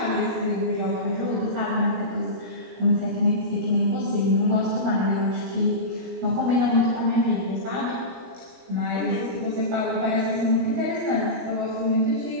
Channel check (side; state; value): left; late; 17 ms